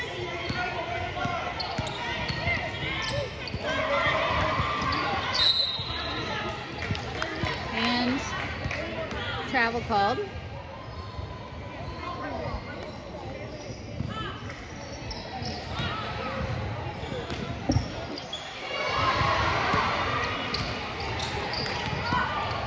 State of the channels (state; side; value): identical; both; correlation 1.00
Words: And travel called.